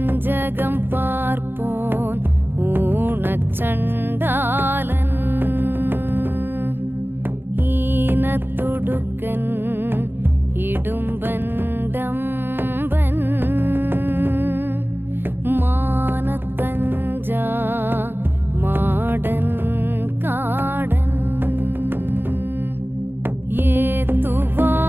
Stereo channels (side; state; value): left; late; 0.10 ms